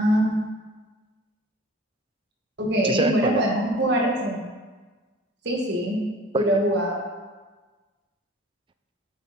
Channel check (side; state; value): both; normal; correlation 0.45